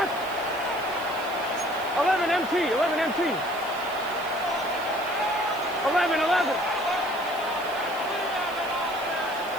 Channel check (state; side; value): noise; left; hiss, 19 dB below the sound